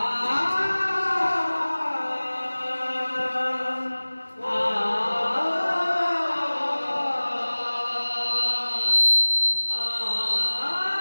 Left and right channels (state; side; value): inverted; both; correlation -1.00